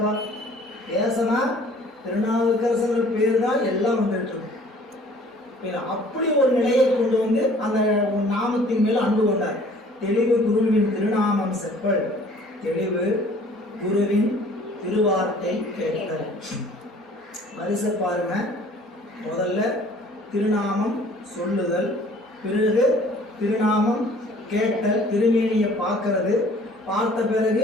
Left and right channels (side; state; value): both; normal; correlation 0.53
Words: பேசனா திருநாவுக்கரசர் பேர் தான் எல்லாம் வந்துட்டு இருக்கு. அப்படி ஒரு நிலையை கொண்டு வந்து அந்த நாமத்தின் மேல் அன்பு கொண்டார். தெளிவு குருவின் திருநாமம் செப்பல், தெளிவு குருவின் திருவார்த்தை கேட்டல். வரிசை பாருங்க. முதல்ல திருநாமம் சொல்லுதல், பிறகு திருநாமம் கேட்டல், திருமேனியை பார்க்கறது, பார்த்த